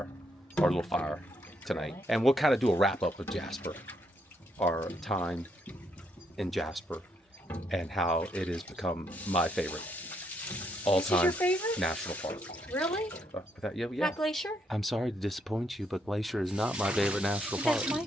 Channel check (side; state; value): both; normal; correlation 0.76